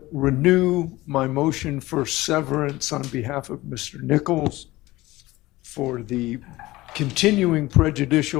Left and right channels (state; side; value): quieter; right; 18.6 dB